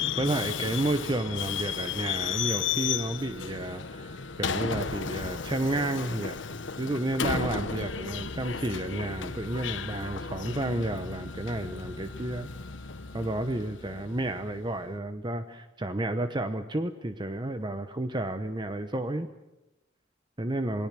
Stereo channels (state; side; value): normal; both; correlation 0.55